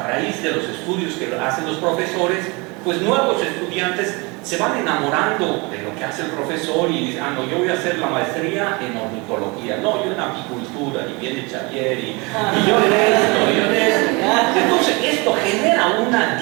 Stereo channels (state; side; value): quieter; left; 27.4 dB